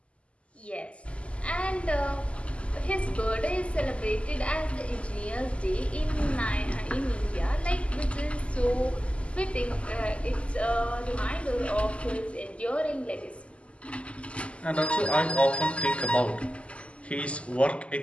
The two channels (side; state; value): right; late; 0.058 ms